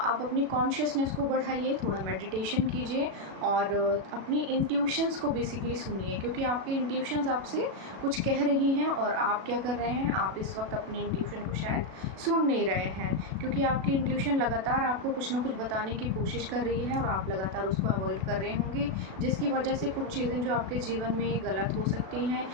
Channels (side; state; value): left; late; 37 ms